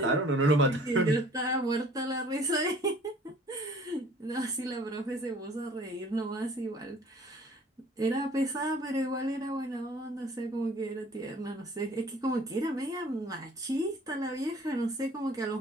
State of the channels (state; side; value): normal; both; correlation 0.52